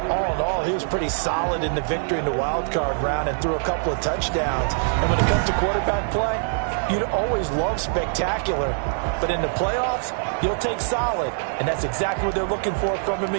All in all, he was pretty solid in the victory in the wild card round and threw a couple of touchdowns. And when it comes to quarterback play, you'd always love spectacular. But in the playoffs, you'll take solid. And that's exactly what they're looking for from him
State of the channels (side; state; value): left; silent; 61 dB below the other